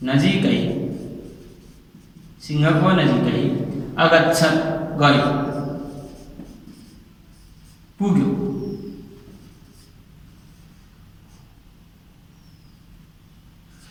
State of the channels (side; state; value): both; identical; correlation 1.00